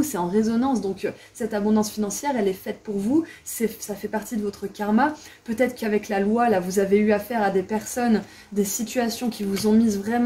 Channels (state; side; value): identical; both; correlation 1.00